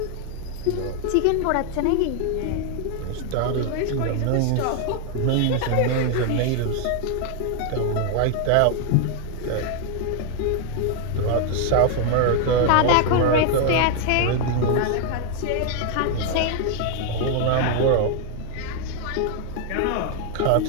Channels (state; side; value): different; both; correlation 0.00